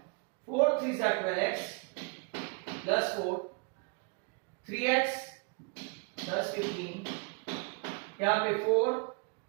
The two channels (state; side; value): quieter; left; 34.8 dB